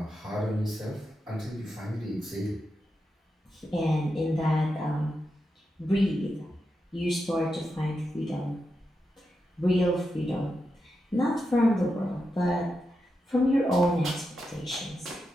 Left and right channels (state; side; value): normal; both; correlation 0.87